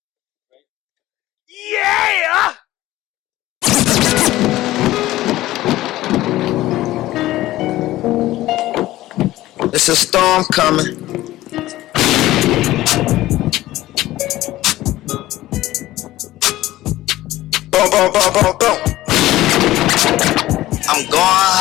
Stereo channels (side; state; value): right; quieter; 16.0 dB